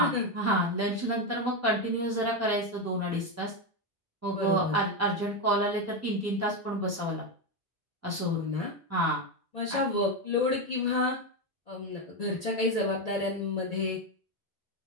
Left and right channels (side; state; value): both; normal; correlation 0.10